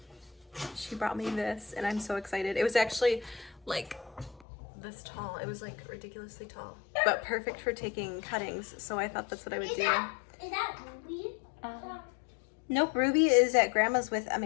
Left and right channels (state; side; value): drops out; right; at 4.5 s